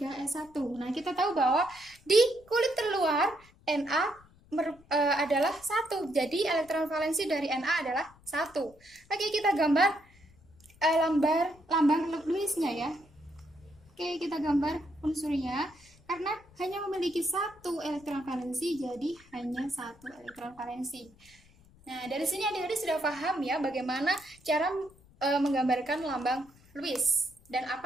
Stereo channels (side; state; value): left; noise; rumble, 27 dB below the sound